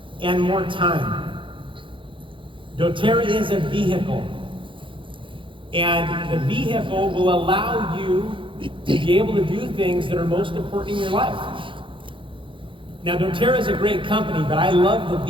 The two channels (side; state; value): left; late; 0.25 ms